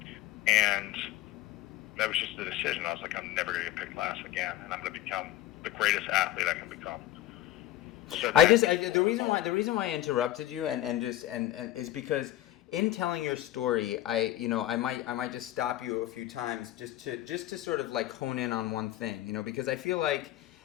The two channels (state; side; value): quieter; right; 13.7 dB